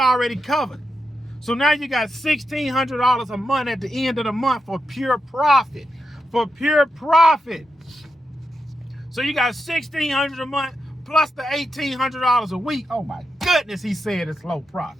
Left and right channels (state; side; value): normal; both; correlation 0.86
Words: covered. So now you got $1,600 a month at the end of the month for pure profit. For pure profit. So you got $1,600 a month plus the $1,800 a week. Oh my goodness, he said it's low